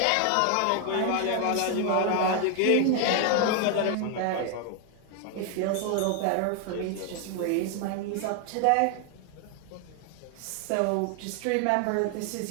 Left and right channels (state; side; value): different; both; correlation 0.00